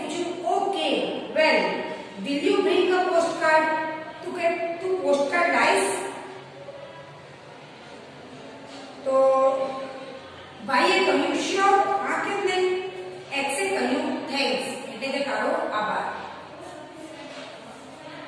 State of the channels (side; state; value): both; identical; correlation 1.00